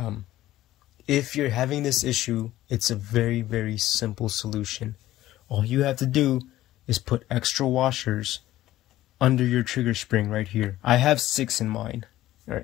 If you're having this issue, it's a very, very simple solution. All you have to do is put extra washers under your trigger spring right here. I have 6 in mine. All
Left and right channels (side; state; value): right; quieter; 14.8 dB